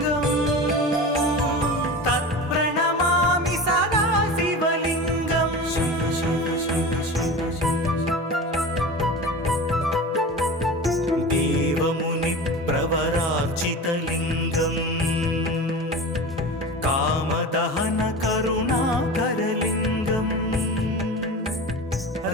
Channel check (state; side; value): normal; both; correlation 0.31